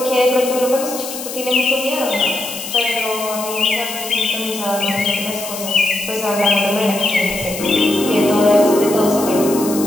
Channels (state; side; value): noise; left; hiss, 9 dB below the sound